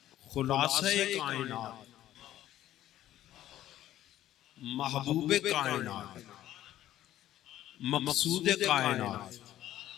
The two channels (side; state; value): right; quieter; 13.1 dB